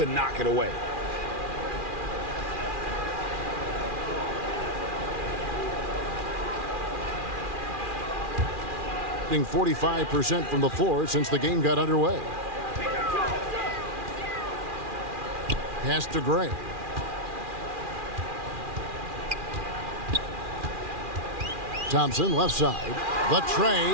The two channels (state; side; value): late; left; 2.4 ms